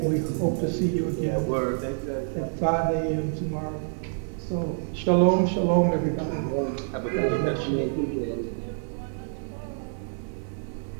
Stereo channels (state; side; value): silent; left; digital silence